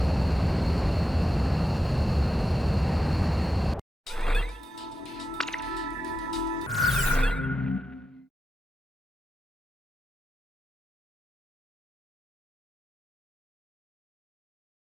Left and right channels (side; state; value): both; normal; correlation 0.88